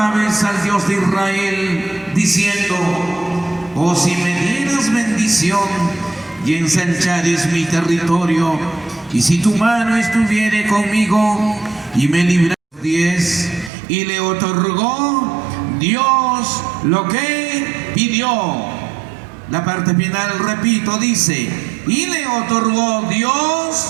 al Dios de Israel, diciendo: oh, si me dieras bendición y ensanchares mi territorio, y si tu mano estuviere conmigo y me libraras. 10. Y le otorgó Dios lo que pidió. La parte final, repito, dice: y le otorgó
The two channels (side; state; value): left; drops out; at 13.7 s